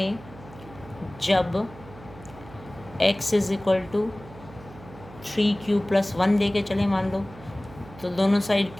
जब x = 3q + 1 लेके चले मान लो, तो दोनों साइड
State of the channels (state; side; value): noise; right; hum, 18 dB below the sound